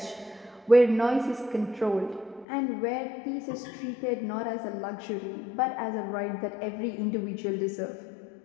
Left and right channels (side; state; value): right; drops out; at 2.5 s